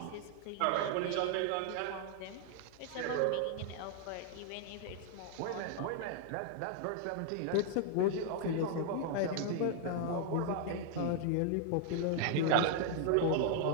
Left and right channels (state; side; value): different; both; correlation 0.00